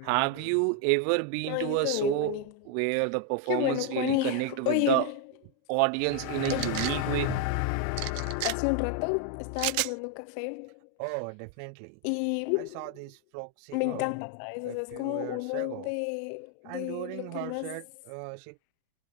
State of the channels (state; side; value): different; both; correlation 0.01